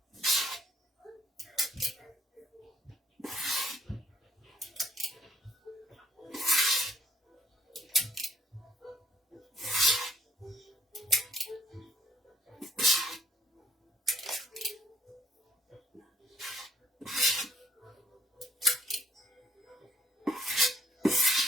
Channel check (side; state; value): both; normal; correlation 0.66